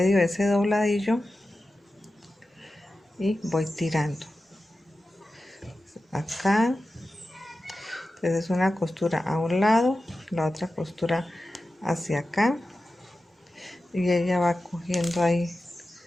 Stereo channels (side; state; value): both; normal; correlation 0.93